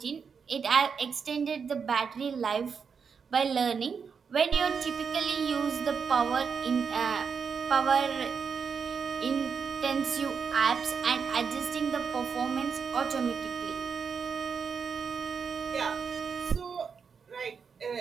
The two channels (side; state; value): left; quieter; 6.1 dB